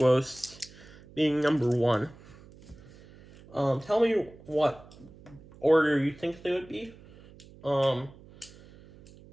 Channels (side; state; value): right; noise; hum, 22 dB below the sound